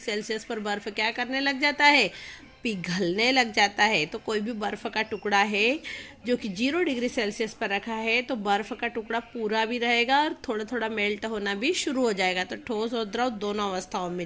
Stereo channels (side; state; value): both; identical; correlation 1.00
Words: पर बर्फ क्या करने लग जाता है, पिघलने लग जाता है। तो कोई भी बर्फ का टुकड़ा है जो कि 0 डिग्री सेल्सियस पर रखा है, तो बर्फ का टुकड़ा पूरा भी रहेगा और थोड़ा थोड़ा मेल्ट होना भी शुरू हो जाएगा। तो ठोस और द्रव दोनों अवस्थाओं में